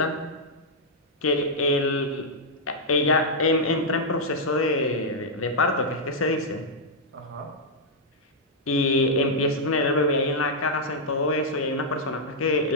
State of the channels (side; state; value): both; normal; correlation -0.06